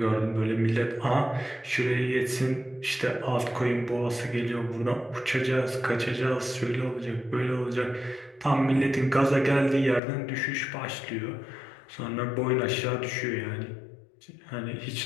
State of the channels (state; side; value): drops out; right; at 10.0 s